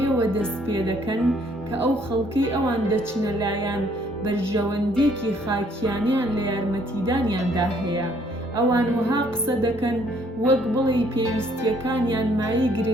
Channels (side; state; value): both; normal; correlation 0.64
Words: دەست پێ دەکەن کە ئەو خەڵکەی ئەوان دەچنە لایەن بەرژەوەندێکی خاکیانیان لە یارمەتیدانیاندا هەیە. ئەوان وەها قسە دەکەن وەک بڵێ پێویستیەکانیان مایەی